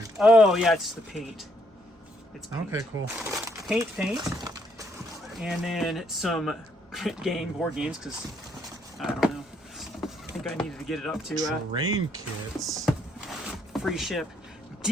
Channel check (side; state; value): both; normal; correlation 0.71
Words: Oh, yeah, it's the paint. It's paint. Okay, cool. Paint. And then some board games, because, I don't know. I think I needed to get it up to terrain kits. Free ship.